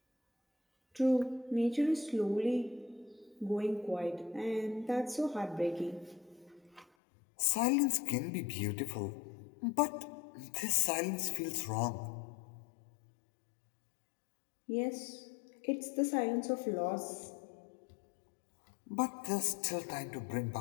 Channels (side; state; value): right; drops out; at 6.9 s